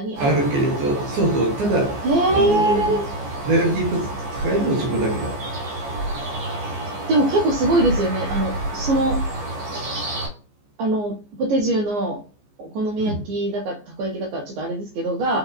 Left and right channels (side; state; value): left; late; 14 ms